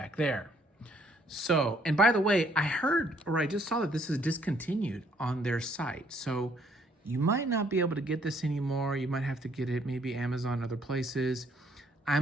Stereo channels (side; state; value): both; normal; correlation 0.66